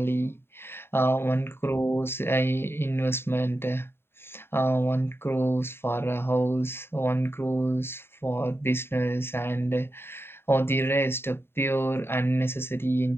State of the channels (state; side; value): late; right; 0.11 ms